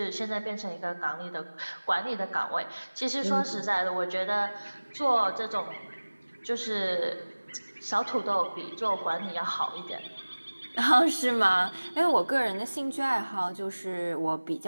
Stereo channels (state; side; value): inverted; both; correlation -1.00